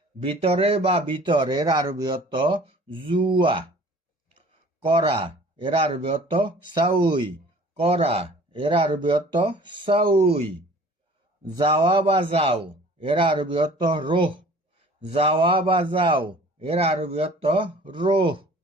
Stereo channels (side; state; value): both; normal; correlation 0.49